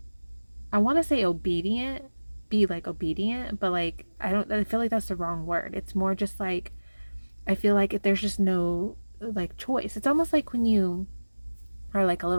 I want to say obedient, be like obedient, but like I don't, I feel like that's the wrong word. It's more just like I feel like if there's just no like choice. It's almost like when you are like a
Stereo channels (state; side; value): inverted; both; correlation -1.00